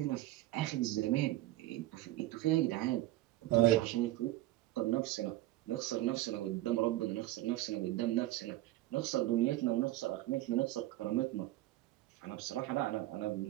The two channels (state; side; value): quieter; left; 16.1 dB